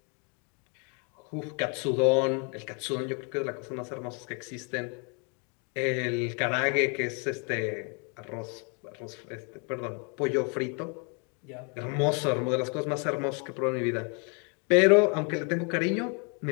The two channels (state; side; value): quieter; right; 36.1 dB